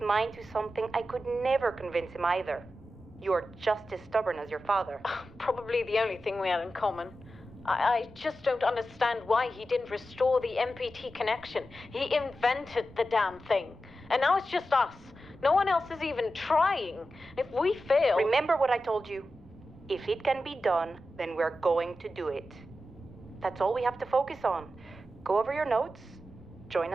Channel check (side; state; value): both; normal; correlation 0.91